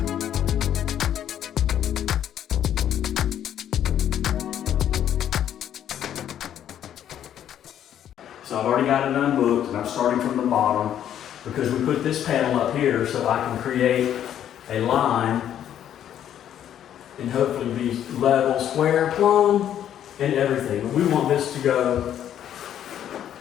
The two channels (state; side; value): quieter; right; 10.4 dB